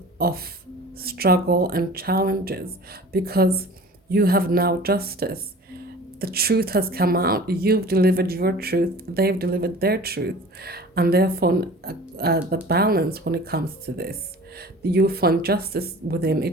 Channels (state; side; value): normal; both; correlation 0.43